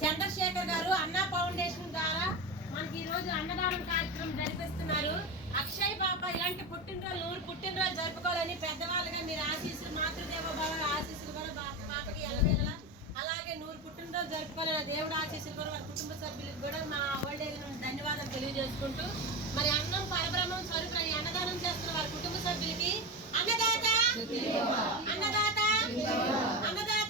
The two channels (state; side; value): normal; both; correlation 0.20